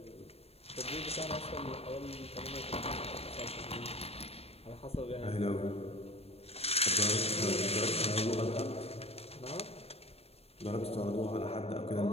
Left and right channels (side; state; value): right; late; 0.29 ms